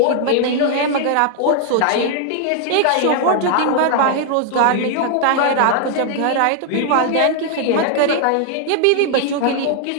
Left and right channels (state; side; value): different; both; correlation 0.00